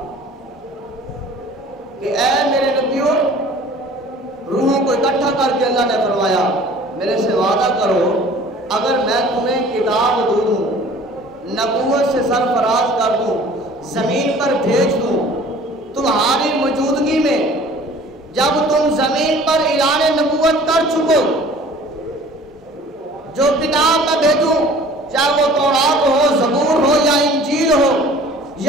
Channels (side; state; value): both; normal; correlation 0.48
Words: کہ اے میرے نبیوں، روحوں کو اکٹھا کر کے اللہ نے فرمایا میرے سے وعدہ کرو اگر میں تمہیں کتاب دوں، نبوت سے سرفراز کر دوں، زمین پر بھیج دوں، تمہاری موجودگی میں جب تم زمین پر اعلان نبوت کر چکو، جو کتاب میں بھیجوں، چاہے وہ تورات ہو، زبور ہو، یا انجیل ہو،